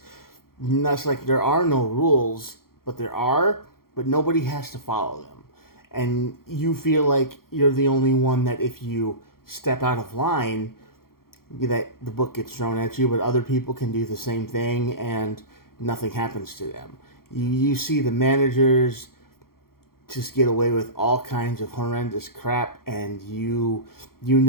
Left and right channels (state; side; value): late; right; 0.93 ms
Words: like there are no rules, but there are, but nobody has to follow them. And you feel like you're the only one that if you step out of line, that the book gets thrown at you, but other people can do the same thing and nothing happens to them. You see the managers just get away with all kinds of horrendous crap, and you